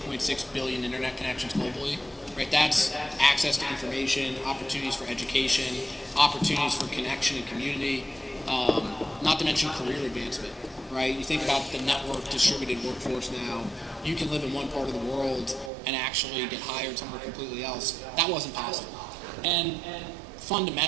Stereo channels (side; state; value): left; drops out; at 15.7 s